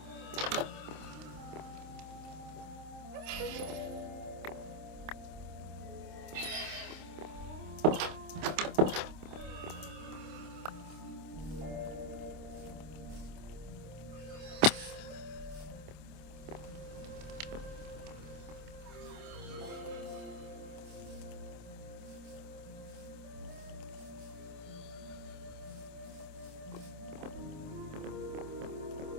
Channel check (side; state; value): left; late; 26 ms